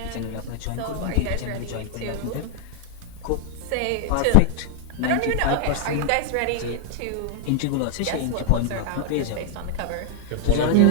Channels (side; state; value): both; different; correlation -0.01